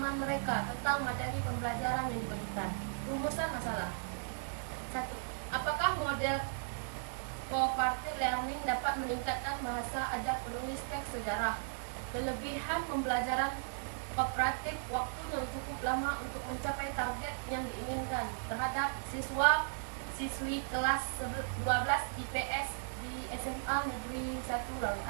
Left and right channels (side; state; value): left; silent; digital silence